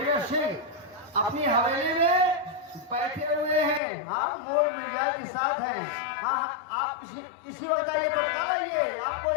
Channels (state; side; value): drops out; right; at 3.8 s